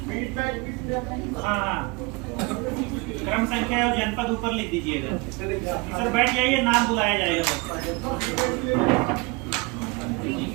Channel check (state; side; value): quieter; left; 26.7 dB